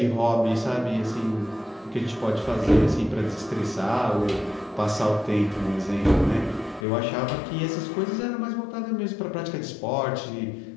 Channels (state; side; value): drops out; right; at 6.9 s